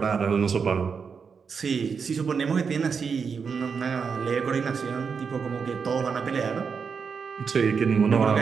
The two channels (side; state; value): left; quieter; 5.9 dB